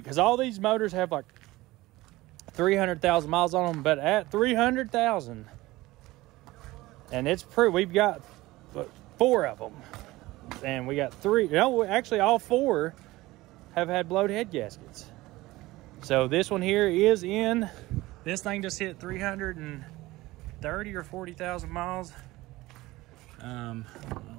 because all these motors have like 300,000 miles on them. But at 300,000, and it's pretty. We've got 4 of them, and we got 3. No, actually, all 4 have had blowed head gaskets. So this one here is in. This thing just hit 330 or 40,000 miles. I don't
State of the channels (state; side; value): quieter; left; 19.0 dB